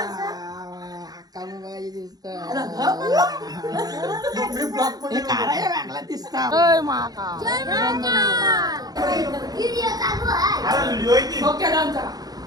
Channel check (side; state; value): left; late; 0.19 ms